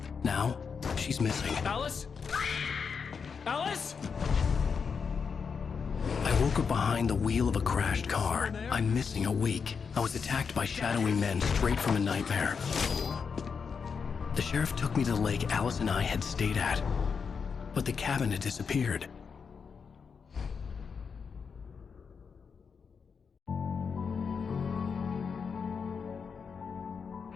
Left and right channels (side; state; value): right; quieter; 5.9 dB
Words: Now, she's missing. Alice? Alice? I woke up behind the wheel of a crashed car. I'm missing a week. I was attacked by shadowy men straight from a nightmare. The sheriff took me to the lake Alice and I had stayed at, but the cabin had disappeared.